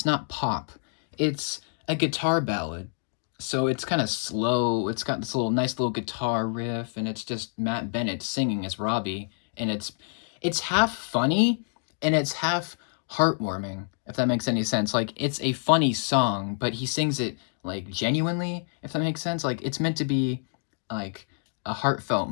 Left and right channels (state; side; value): silent; right; 60 dB below the other